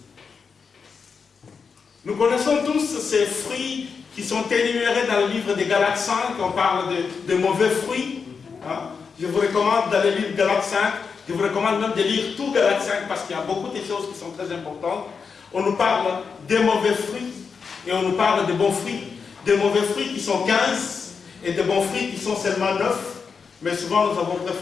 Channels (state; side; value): quieter; right; 5.6 dB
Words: Nous connaissons tous ces fruits qui sont énumérés dans le livre des Galates 5, on parle de mauvais fruits. Hein? Je vous recommande d'aller lire Galates 5, je vous recommande même de lire tout Galates 5 parce qu'il y a beaucoup de choses qui sont très importantes. On nous parle des mauvais fruits et on nous parle de bons fruits. Des mauvais fruits qui sont 15 et de bons fruits qui sont seulement 9. Mais souvent nous avons